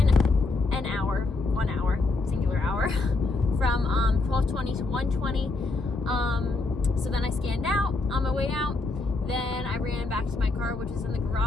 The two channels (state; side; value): quieter; right; 3.4 dB